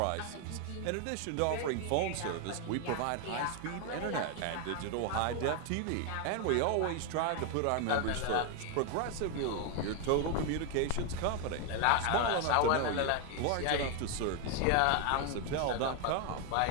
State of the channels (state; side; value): different; both; correlation 0.01